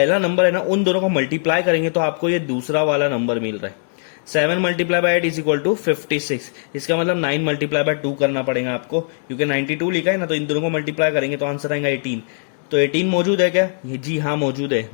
नंबर है ना, उन दोनों को मल्टीप्लाई करेंगे तो आपको ये दूसरा वाला नंबर मिल रहा है। 7 multiply by 8 is equal to 56। इसका मतलब 9 मल्टीप्लाई बाय 2 करना पड़ेगा आपको, क्योंकि 92 लिखा है ना, तो इन दोनों को मल्टीप्लाई करेंगे तो आंसर आएगा 18। तो 18 मौजूद है क्या, ये जी हाँ मौजूद है।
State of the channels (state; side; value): silent; right; digital silence